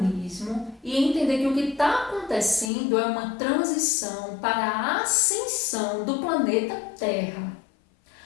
e entender que o que está acontecendo é uma transição para a ascensão do planeta Terra.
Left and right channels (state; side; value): drops out; right; at 2.7 s